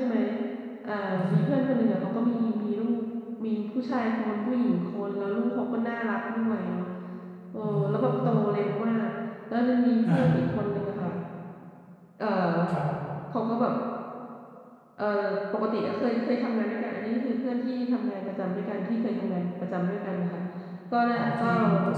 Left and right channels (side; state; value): both; identical; correlation 1.00